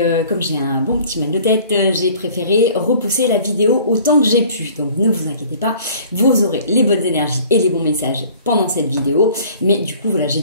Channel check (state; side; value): inverted; both; correlation -0.51